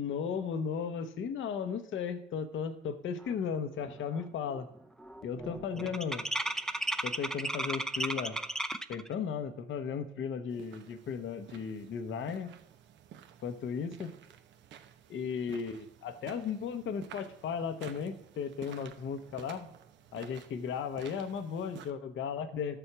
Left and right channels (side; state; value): right; quieter; 4.4 dB